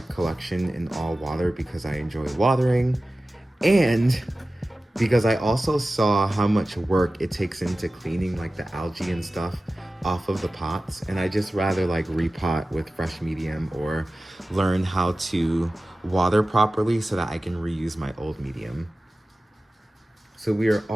collection in all water because I enjoy watering, and because I also saw how much work it takes into cleaning like the algae and stuff off of the pots, and I just rather like repot with fresh medium or learn how to water properly so that I can reuse my old medium. So we are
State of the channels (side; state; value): both; normal; correlation 0.96